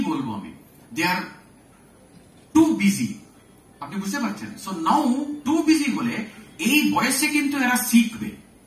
বলবো আমি, দে আর টু বিজি। আপনি বুঝতে পারছেন? সো নাও টু বিজি হলে এই বয়সে কিন্তু এরা শিখবে,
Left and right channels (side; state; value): both; identical; correlation 1.00